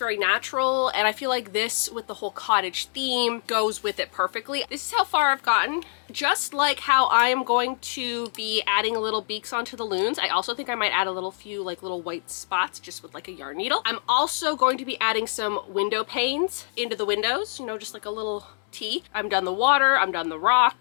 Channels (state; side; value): silent; right; 60 dB below the other